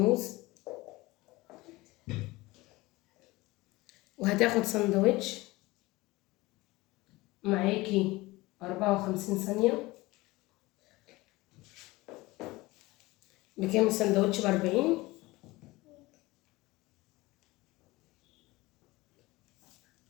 وهتاخد سندوتش. معاكي 54 ثانية. بكام السندوتش؟ ب40.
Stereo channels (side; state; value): right; quieter; 20.7 dB